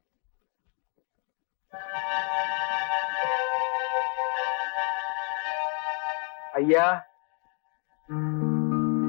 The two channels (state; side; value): quieter; right; 39.8 dB